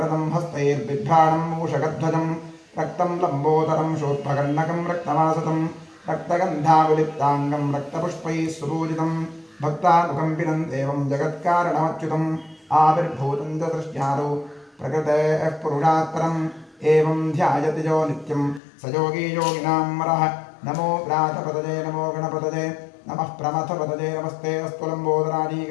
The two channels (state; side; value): drops out; right; at 18.6 s